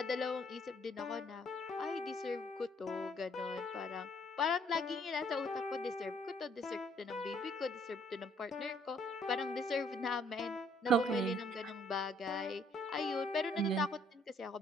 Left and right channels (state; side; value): normal; both; correlation 0.65